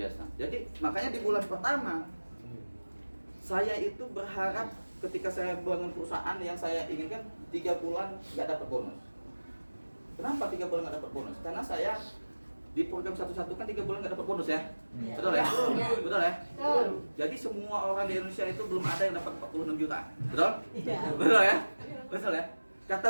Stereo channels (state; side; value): inverted; both; correlation -1.00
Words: Jadi makanya di bulan pertama saya itu berharap ketika saya bangun perusahaan yang saya inginkan 3 bulan nggak dapat bonus. Kenapa 3 bulan nggak dapat bonus? Karena saya di program satu-satu kan 3 bulan nggak dapat bonus ya, betul ya? Betul ya? Jadi semua orang di Indonesia itu belum ada yang dapat 46 juta, betul? Betul ya? Betul ya?